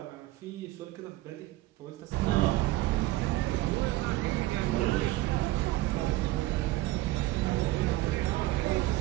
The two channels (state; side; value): quieter; left; 17.4 dB